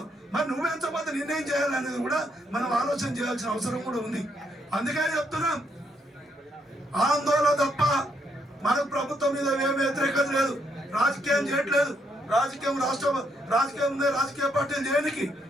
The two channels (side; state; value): both; normal; correlation 0.75